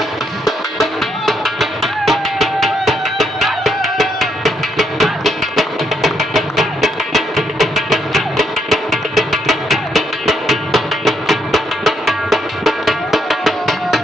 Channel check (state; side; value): normal; both; correlation 0.75